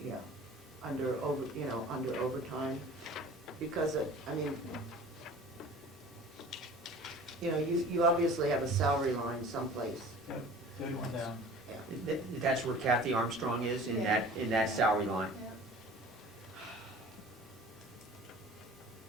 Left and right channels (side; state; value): both; normal; correlation 0.43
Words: under overtime, because you obviously have a salary line someplace. Yep, third one down. Yeah. That's where Kathy Armstrong is, in that salary line. Yeah.